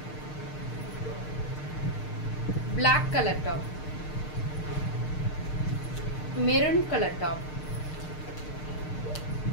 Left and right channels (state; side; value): late; right; 6.6 ms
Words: black colour top, maroon colour top,